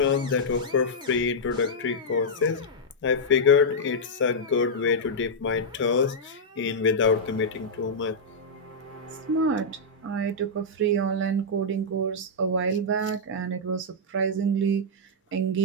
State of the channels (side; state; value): both; normal; correlation -0.07